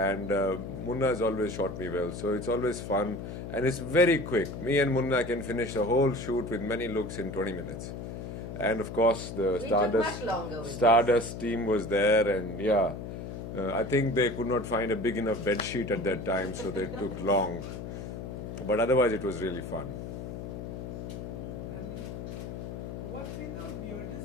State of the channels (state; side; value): noise; left; hum, 8 dB below the sound